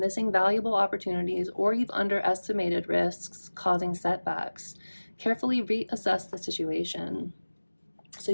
valuable opportunities, or you've underestimated risks causing setbacks. Carefully reassess the situation. So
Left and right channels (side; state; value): both; inverted; correlation -1.00